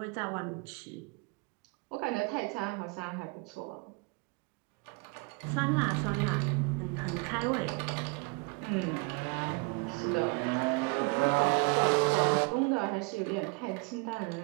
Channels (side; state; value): left; quieter; 29.7 dB